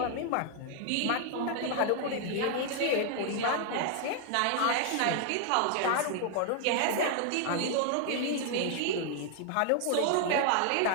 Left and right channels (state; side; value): different; both; correlation 0.00